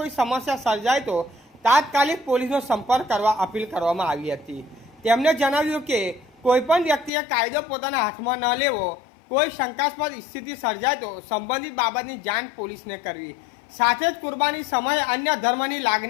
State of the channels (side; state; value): right; drops out; at 7.1 s